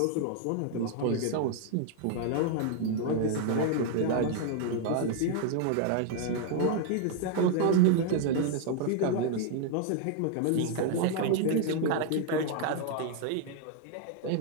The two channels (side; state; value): both; different; correlation 0.00